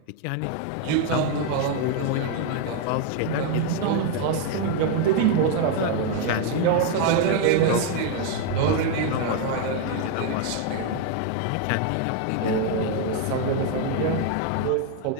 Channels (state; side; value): different; both; correlation 0.01